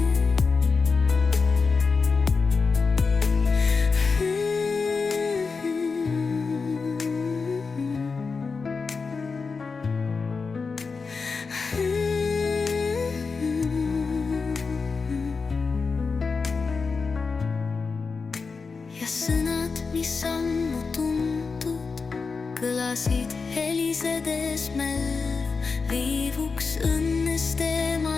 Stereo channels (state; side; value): quieter; right; 4.8 dB